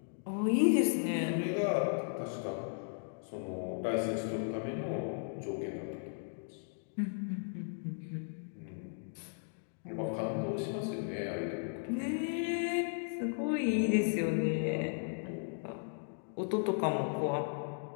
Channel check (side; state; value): right; silent; digital silence